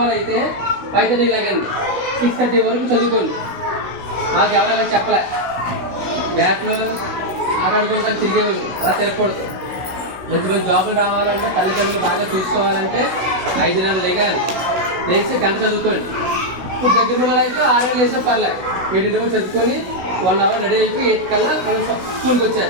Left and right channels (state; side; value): late; left; 16 ms